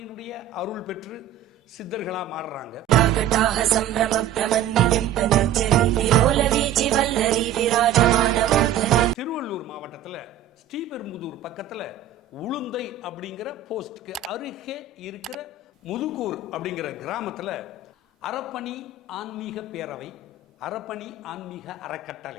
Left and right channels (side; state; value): left; quieter; 8.3 dB